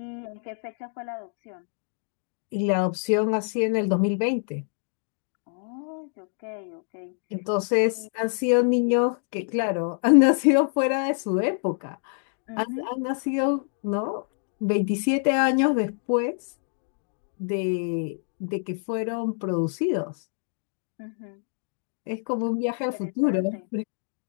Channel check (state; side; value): silent; right; 60 dB below the other